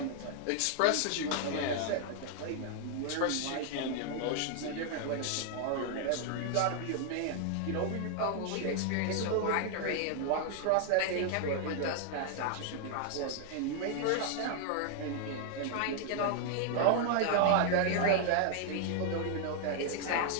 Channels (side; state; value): both; different; correlation 0.00